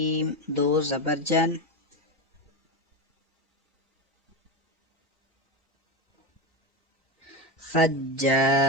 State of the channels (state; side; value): normal; both; correlation 0.15